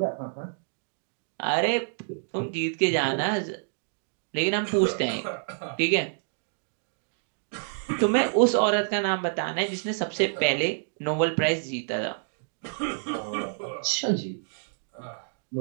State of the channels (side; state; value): left; silent; digital silence